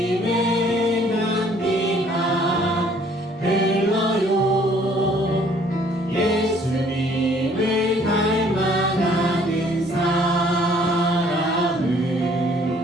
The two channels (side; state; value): both; normal; correlation 0.59